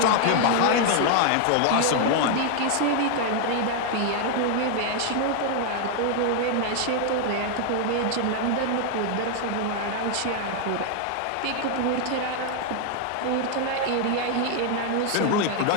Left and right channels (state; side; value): different; both; correlation 0.00